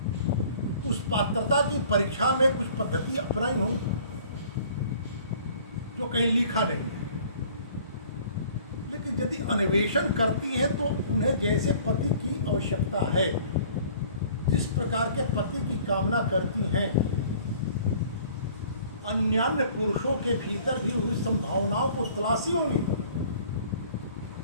उस पात्रता की परीक्षा में कुछ पद्धति अपनाई होंगी जो कहीं लिखा नहीं है, लेकिन यदि अन्वेषण करती हैं तो उन्हें जैसे पति की आवश्यकता है, जिस प्रकार के पति की कामना करती हैं, अन्यान्य पुरुषों के भीतर भी उस संभावनाओं को तलाशी होंगी।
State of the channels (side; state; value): both; inverted; correlation -0.52